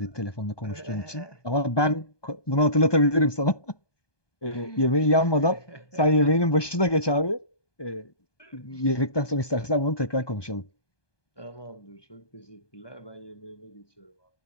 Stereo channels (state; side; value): late; right; 1.2 ms